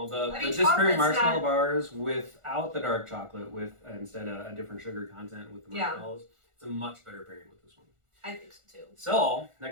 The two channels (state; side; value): late; left; 1.4 ms